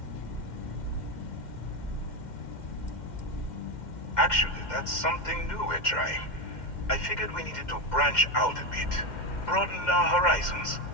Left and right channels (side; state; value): right; late; 2.1 ms